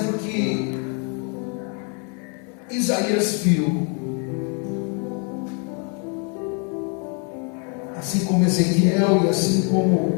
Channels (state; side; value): quieter; right; 38.2 dB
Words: que Isaías viu, assim como Ezequiel e assim